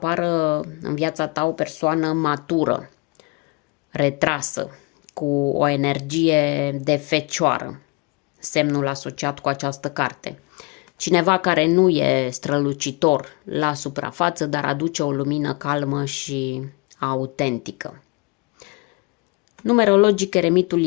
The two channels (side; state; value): right; quieter; 28.4 dB